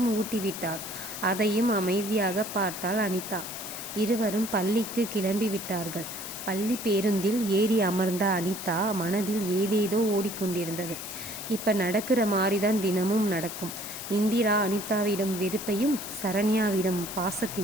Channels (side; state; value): left; noise; hiss, 9 dB below the sound